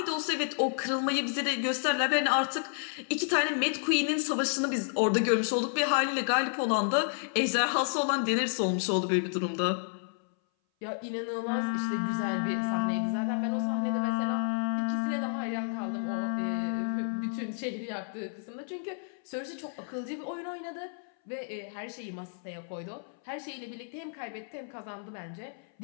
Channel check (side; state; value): right; silent; 57 dB below the other